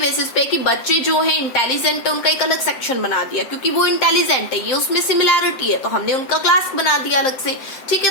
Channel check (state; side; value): late; right; 7.6 ms